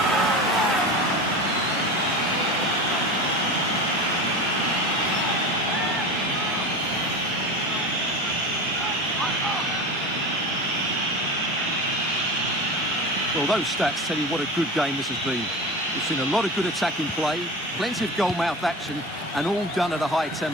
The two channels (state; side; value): normal; both; correlation 0.29